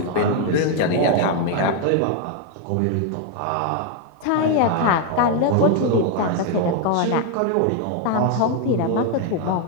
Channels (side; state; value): both; different; correlation 0.00